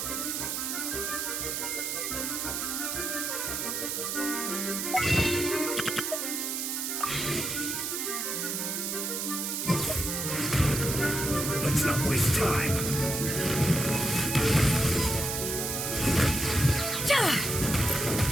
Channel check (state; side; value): noise; right; hiss, 2 dB below the sound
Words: Let's not waste time.